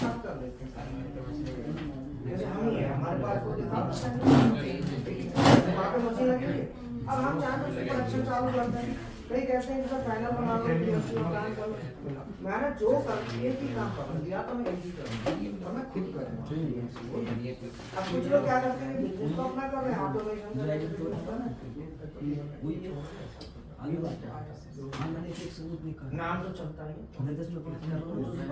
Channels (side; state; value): both; identical; correlation 1.00